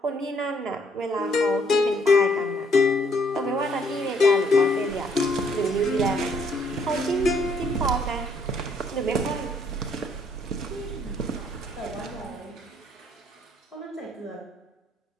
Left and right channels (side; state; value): both; normal; correlation 0.66